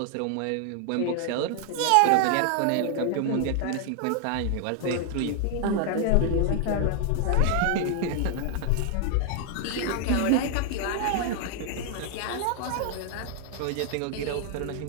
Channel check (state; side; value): different; both; correlation 0.00